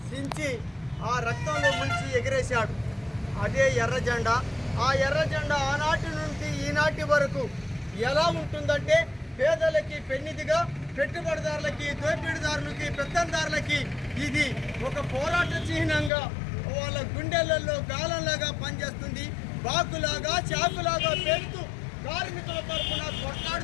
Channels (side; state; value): right; drops out; at 16.1 s